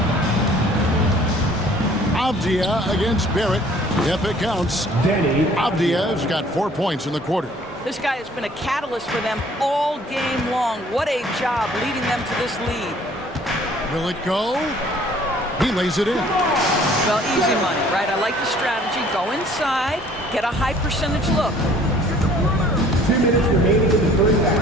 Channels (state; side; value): normal; both; correlation 0.55